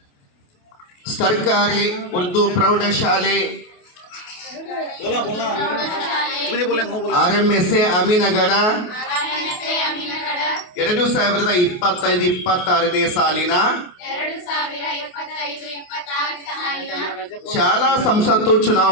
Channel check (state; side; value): late; right; 28 ms